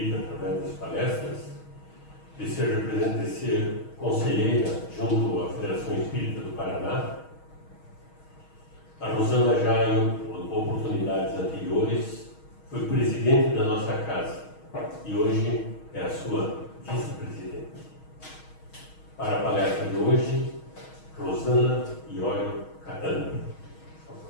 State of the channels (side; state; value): right; late; 6.3 ms